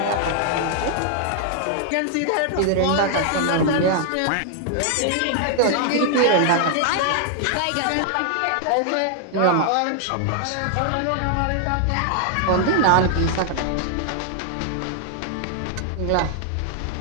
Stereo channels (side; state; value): both; different; correlation 0.00